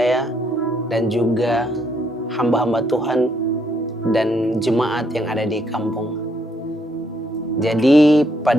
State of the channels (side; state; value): both; normal; correlation 0.72